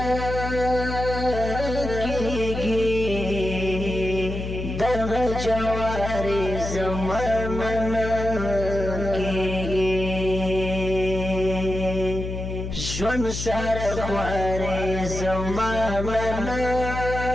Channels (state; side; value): noise; left; hum, 5 dB below the sound